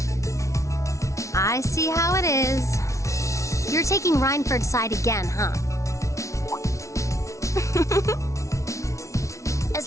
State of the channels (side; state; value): right; late; 0.14 ms